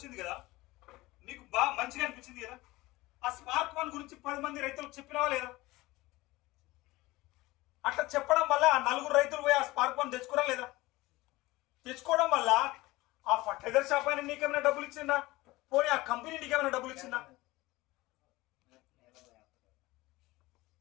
కదా, నీకు బాగా మంచిగా అనిపించింది కదా. ఆ స్పార్క్ 1 గురించి 10 మంది రైతులకు చెప్పినావా లేదా? అట్లా చెప్పడం వల్ల ఆ 4 రైతులు పోయి ఆ స్పార్క్ 1 తెచ్చుకోరా లేదా? తెచ్చుకోవడం వల్ల ఆ ఫర్టిలైజర్ షాప్ అయినా నీకేమైనా డబ్బులు ఇచ్చిందా? పోనీ ఆ కంపెనీ నీకేమైనా డబ్బులు ఇచ్చిందా?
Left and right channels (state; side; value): quieter; right; 19.9 dB